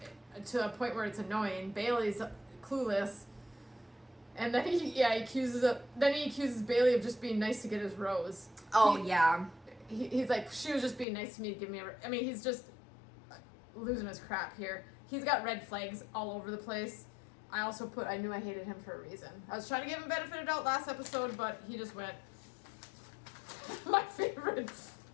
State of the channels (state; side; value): drops out; right; at 11.1 s